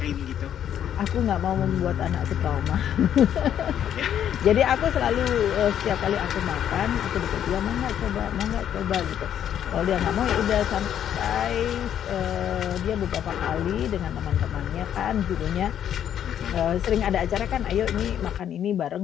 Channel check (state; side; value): quieter; right; 9.9 dB